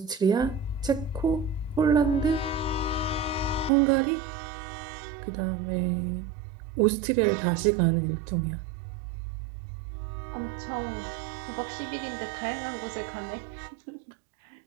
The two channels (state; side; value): drops out; left; at 3.7 s